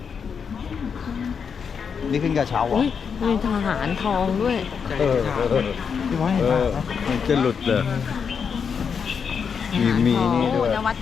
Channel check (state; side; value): quieter; right; 6.5 dB